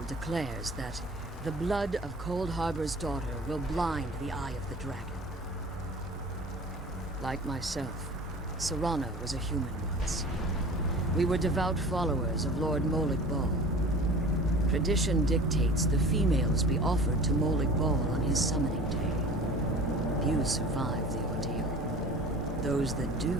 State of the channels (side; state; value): both; normal; correlation 0.41